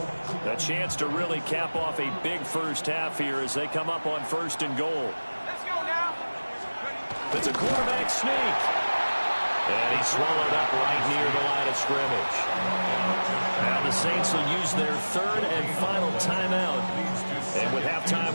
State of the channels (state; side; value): inverted; both; correlation -1.00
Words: A chance to really cap off a big 1st half here as they come up on 1st and goal. Let's go now. It's a quarterback sneak. And he's swallowed up right near the line of scrimmage. Now the Saints will use their 3rd and final timeout. And with halftime